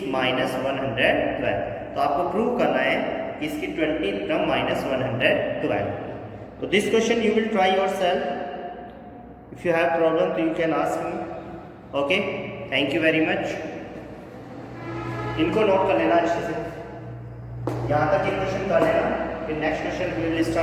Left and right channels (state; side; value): identical; both; correlation 1.00